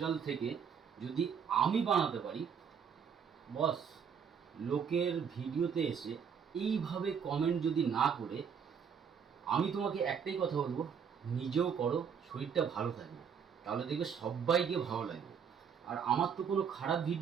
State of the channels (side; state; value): left; quieter; 7.1 dB